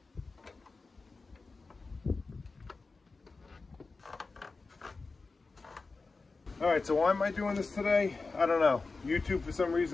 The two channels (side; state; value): right; quieter; 4.0 dB